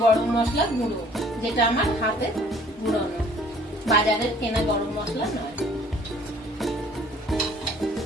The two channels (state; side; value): normal; both; correlation 0.55